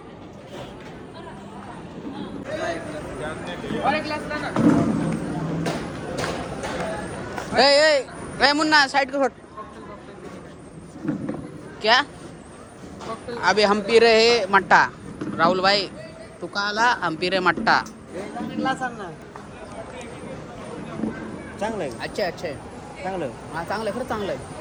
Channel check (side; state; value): both; identical; correlation 1.00